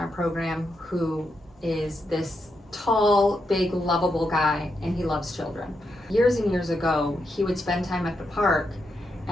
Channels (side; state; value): both; normal; correlation 0.83